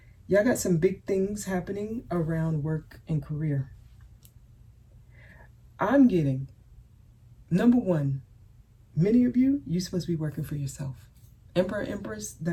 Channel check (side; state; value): both; identical; correlation 1.00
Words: Y'all got some big things happening around work and career. I'm getting, number one, many of you, you're supposed to be working for yourself. Emperor, Empress,